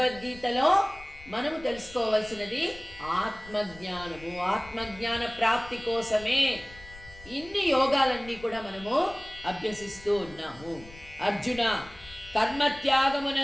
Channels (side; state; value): left; noise; rumble, 20 dB below the sound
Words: మనము తెలుసుకోవాల్సినది ఆత్మజ్ఞానము. ఆత్మజ్ఞాన ప్రాప్తి కోసమే ఇన్ని యోగాలన్నీ కూడా మనము అభ్యసిస్తూ ఉన్నాము. అర్జున,